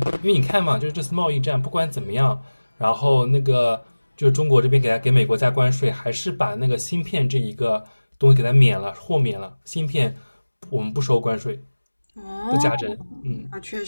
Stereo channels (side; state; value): both; inverted; correlation -1.00